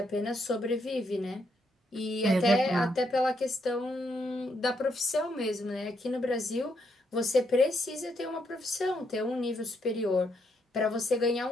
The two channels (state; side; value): normal; both; correlation 0.76